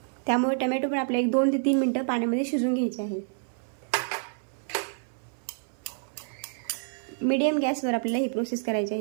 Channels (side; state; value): left; silent; 59 dB below the other